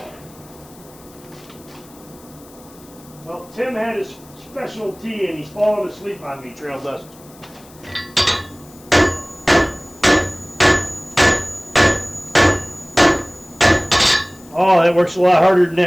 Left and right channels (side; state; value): left; noise; hiss, 24 dB below the sound